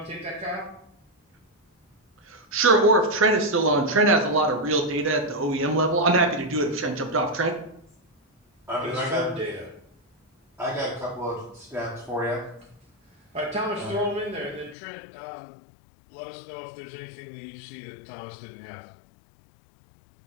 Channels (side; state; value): right; drops out; at 14.8 s